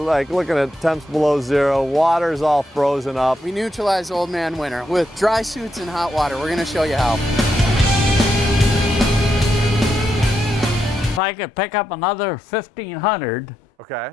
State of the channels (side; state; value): both; normal; correlation 0.82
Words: looking at temps below zero. Water's all frozen up. We neutralize old man winter with dry suits and hot water. We're gonna show you how. If I could pick up another 1,500, Okay.